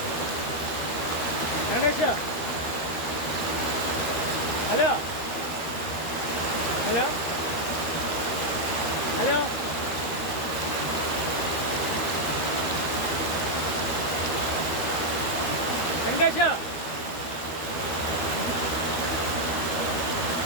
Venkatesh hello hello hello Venkatesh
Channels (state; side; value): late; right; 13 ms